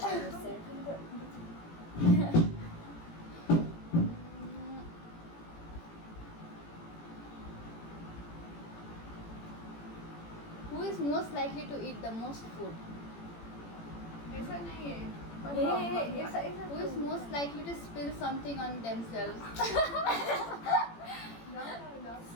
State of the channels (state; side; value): late; right; 18 ms